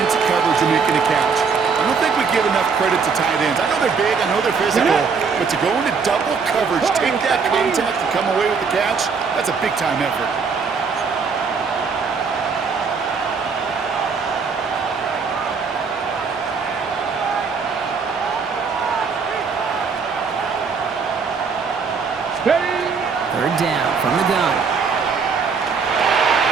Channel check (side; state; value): left; quieter; 5.4 dB